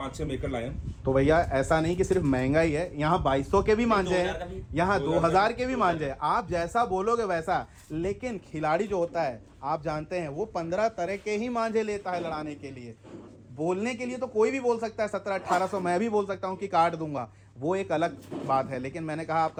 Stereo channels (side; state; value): both; identical; correlation 1.00